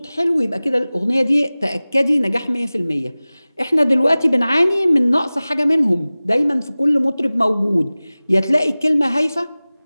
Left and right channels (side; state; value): both; inverted; correlation -0.98